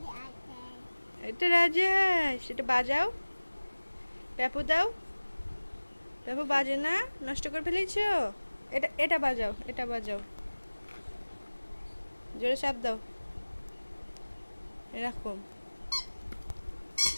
এটা রাজা হাঁস, এটা বাজাও। পেপু দাও। পেপু বাজে না, নষ্ট করে ফেলেছো। এটা এটা বাজাও, এটা বাজাও। জোরে চাপ দাও, এরকম।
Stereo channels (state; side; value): inverted; both; correlation -1.00